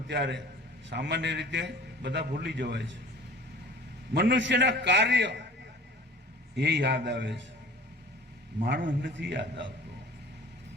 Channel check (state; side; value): normal; both; correlation 0.44